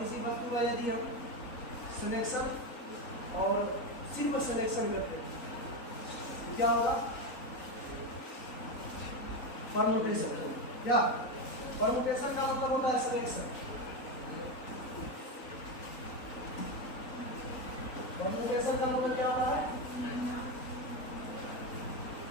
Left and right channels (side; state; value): right; late; 3.9 ms